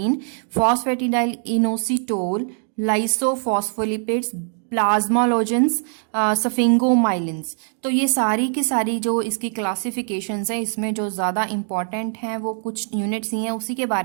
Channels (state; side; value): silent; left; 58 dB below the other